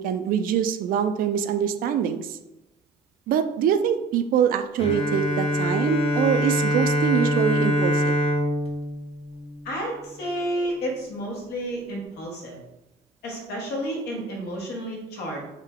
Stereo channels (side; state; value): left; quieter; 3.6 dB